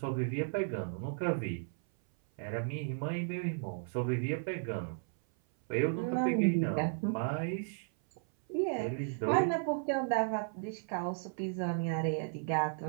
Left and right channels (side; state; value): left; silent; 55 dB below the other